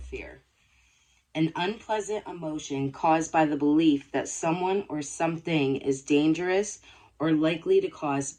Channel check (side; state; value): both; identical; correlation 1.00